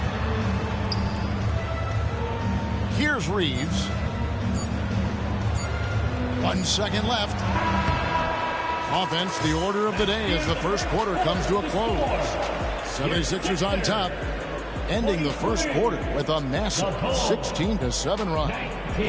Here's Reeves. 1 second left. Offense, the order of the day as the first quarter comes to a close. 76ers on top, ending the first quarter with a massive 16-7 run.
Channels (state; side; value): identical; both; correlation 1.00